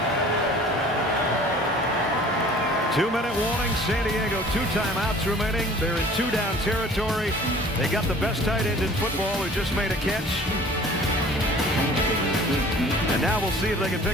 2-minute warning. San Diego, 2 timeouts remaining. They're in 2-down territory. They got the best tight end in football who just made a catch. And now we'll see if they can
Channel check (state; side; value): normal; both; correlation 0.49